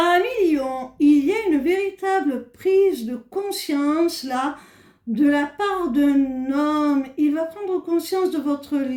lions, il y a une véritable prise de conscience là, de la part d'un homme. Il va prendre conscience de votre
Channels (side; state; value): both; identical; correlation 1.00